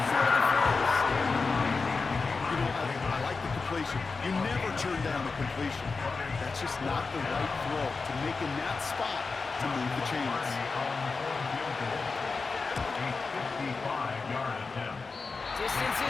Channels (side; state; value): right; quieter; 4.3 dB